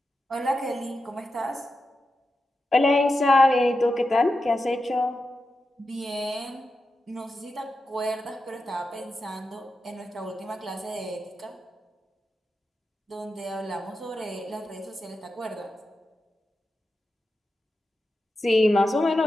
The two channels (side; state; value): both; normal; correlation 0.90